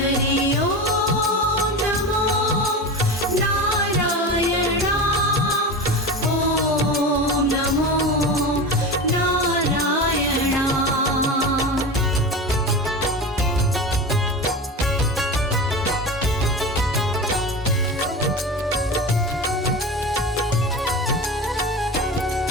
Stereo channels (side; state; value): both; normal; correlation 0.27